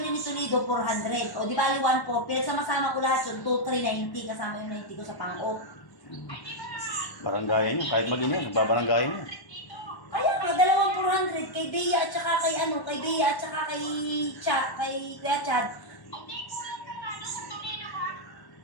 ni Toledo, 400. O di bali 1,400. Pinagsama-sama ko lahat yun, 2,390. Kasama yung 90 ko sa pang-o. Baranggayan niya. Kahit mag-ina, nagbabaranggayan niya. Kaya nga, dalawang 400 kay Bea at saka kay kay Bea at saka kay Kuya Chad.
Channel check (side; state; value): right; late; 1.1 ms